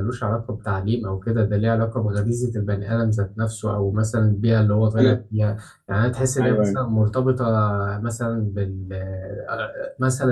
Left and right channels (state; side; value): identical; both; correlation 1.00